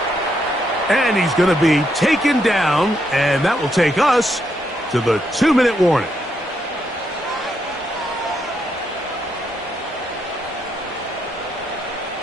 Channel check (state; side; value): normal; both; correlation 0.78